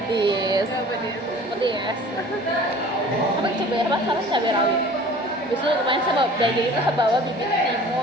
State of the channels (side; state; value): both; normal; correlation 0.46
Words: Pedes. Apa coba ya, harus cabai rawit. Biasanya kemarin saya belajar itu saya bawa bibit